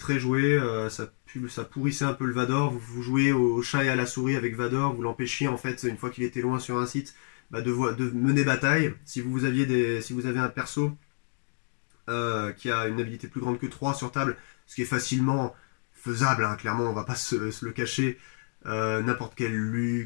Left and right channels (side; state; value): right; silent; 59 dB below the other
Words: jouée, ça pourrissait un peu le Vador, vous jouez au chat et à la souris avec Vador, vous l'empêchiez en fait, une fois qu'il était loin sur un site, bah, de mener bataille. Si vous avez un perso qui a une habilité plus grande que 3 sur table, ce qui est facilement faisable, hein, clairement, on va pas se le cacher, n'importe quel